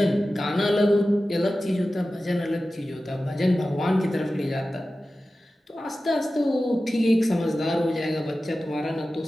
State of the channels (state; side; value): normal; both; correlation 0.95